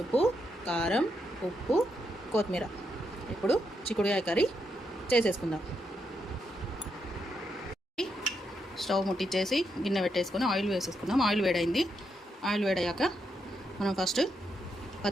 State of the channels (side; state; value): both; normal; correlation 0.81